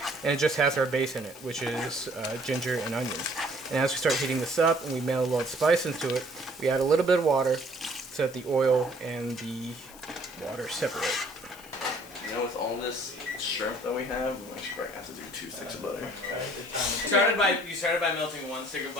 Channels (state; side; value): noise; left; hiss, 20 dB below the sound